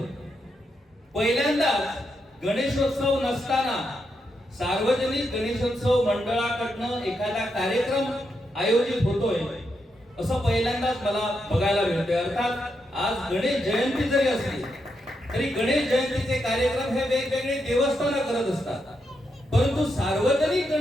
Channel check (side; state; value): both; normal; correlation 0.83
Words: पहिल्यांदाच गणेशोत्सव नसताना सार्वजनिक गणेशोत्सव मंडळाकडनं एखादा कार्यक्रम आयोजित होतोय असं पहिल्यांदाच मला बघायला मिळतंय. अर्थात आज गणेश जयंती जरी असली तरी गणेश जयंतीचे कार्यक्रम हे वेगवेगळे देवस्थानं करत असतात, परंतु सार्वजनिक